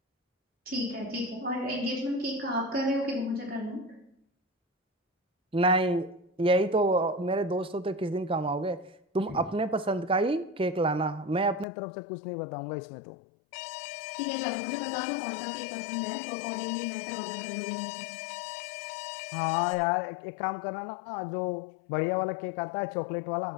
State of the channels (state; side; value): drops out; right; at 11.7 s